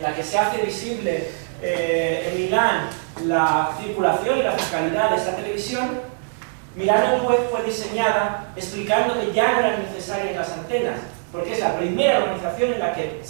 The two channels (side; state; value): left; silent; digital silence